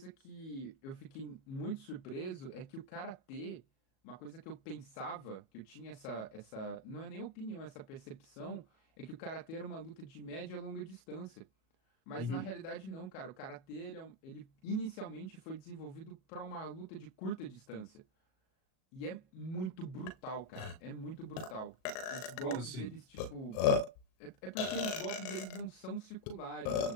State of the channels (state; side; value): late; right; 37 ms